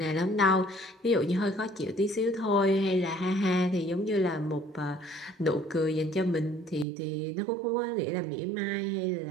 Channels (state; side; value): drops out; left; at 6.9 s